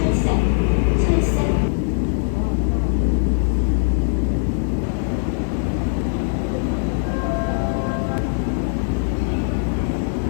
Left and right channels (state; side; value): silent; right; digital silence